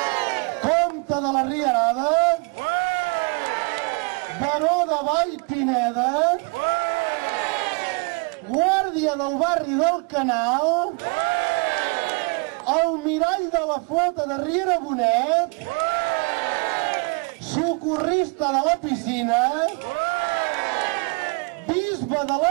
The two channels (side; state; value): left; quieter; 32.8 dB